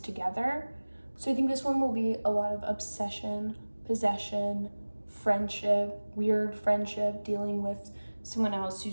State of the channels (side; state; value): both; inverted; correlation -1.00